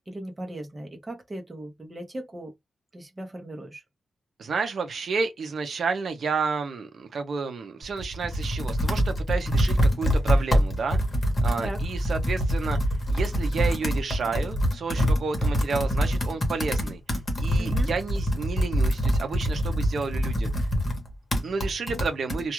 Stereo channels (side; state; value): both; normal; correlation 0.86